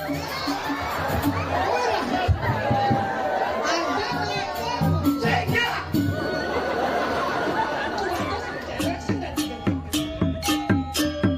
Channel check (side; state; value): both; identical; correlation 1.00